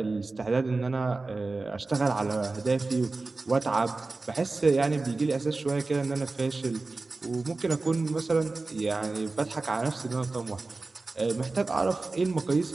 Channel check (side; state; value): left; quieter; 3.5 dB